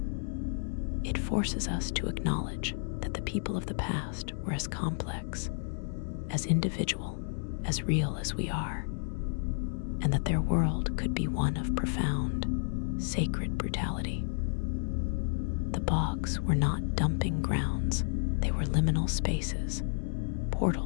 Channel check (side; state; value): right; silent; digital silence